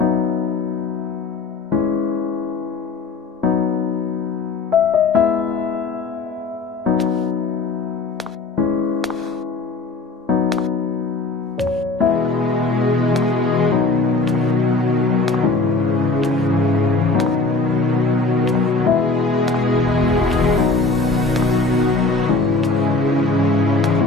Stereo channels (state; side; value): quieter; right; 3.5 dB